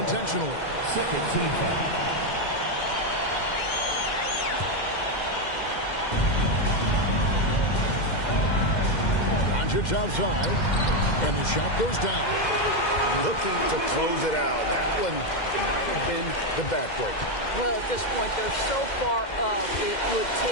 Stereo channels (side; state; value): right; late; 2.1 ms